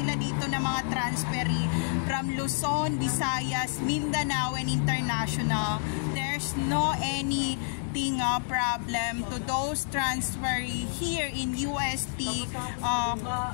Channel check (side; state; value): right; silent; digital silence